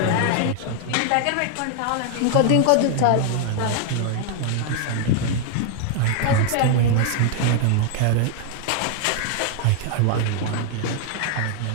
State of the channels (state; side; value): different; both; correlation 0.00